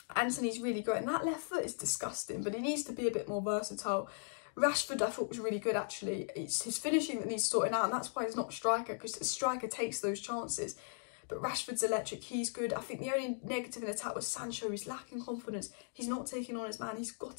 Antony's really growing. That left foot is disgusting, but he needs to be a bit more versatile. Rashford, I thought, was really good, actually. It's his finishing that needs sorting out, and that's why he's not a striker, because a striker takes those chances. But Rashford's electric, he's good. I think the only negative in attack was Sancho. He's lacking confidence. He's not taking on his man. He's got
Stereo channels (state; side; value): silent; right; digital silence